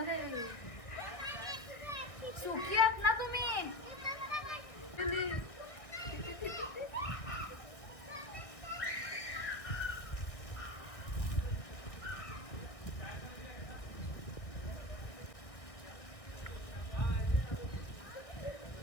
देवी. सुकी आहेत ना तुम्ही.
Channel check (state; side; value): late; right; 1.6 ms